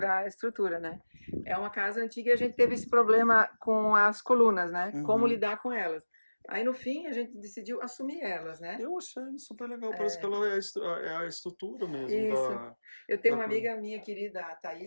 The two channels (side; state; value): both; inverted; correlation -1.00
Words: a estrutura, né? É uma casa antiga e a gente teve esse problema com as colunas, né? Como lidar com elas. Aí, no fim, a gente decidiu assumir elas, né? Eu achei super legal, parece que ela é a estrutura mesmo Isso. Eu tenho uma da amiga minha querida, a